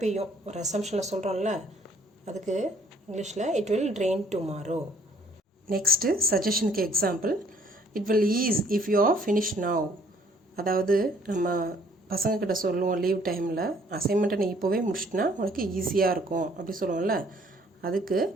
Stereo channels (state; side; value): normal; both; correlation 0.61